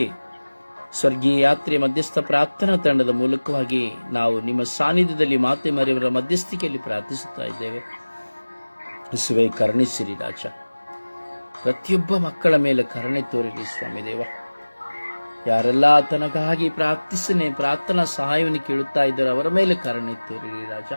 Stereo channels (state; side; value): inverted; both; correlation -1.00